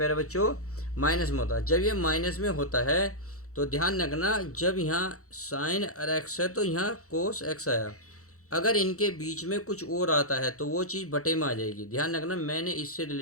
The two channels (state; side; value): late; right; 0.65 ms